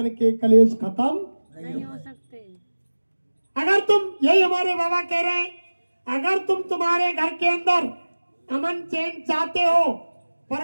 के कलेश खत्म नहीं हो सकते। अगर तुम, यही हमारे बाबा कह रहे हैं, अगर तुम तुम्हारे घर के अंदर अमन चैन चाहते हो,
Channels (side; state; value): both; inverted; correlation -1.00